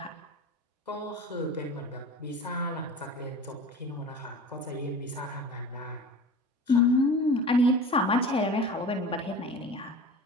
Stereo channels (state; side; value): normal; both; correlation 0.36